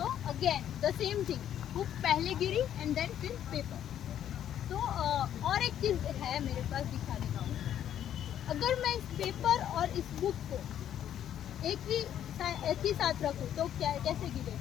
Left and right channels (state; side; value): quieter; right; 10.4 dB